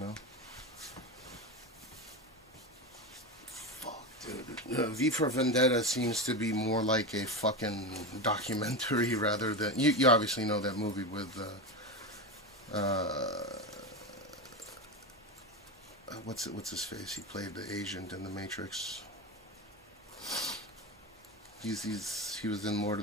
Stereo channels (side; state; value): both; normal; correlation 0.18